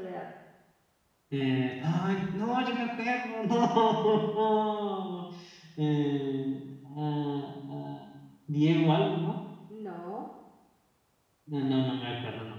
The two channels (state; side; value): identical; both; correlation 1.00